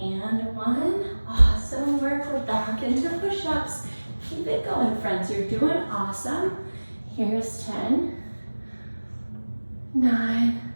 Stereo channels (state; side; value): inverted; both; correlation -1.00